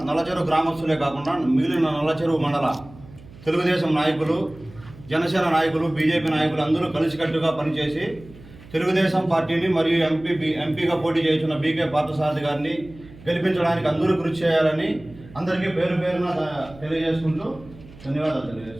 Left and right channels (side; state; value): right; noise; hum, 20 dB below the sound